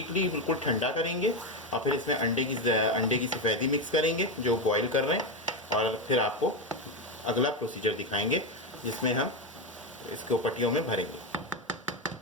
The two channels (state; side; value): normal; both; correlation 0.10